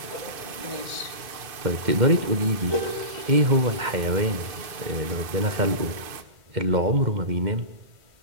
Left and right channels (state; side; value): late; left; 2.5 ms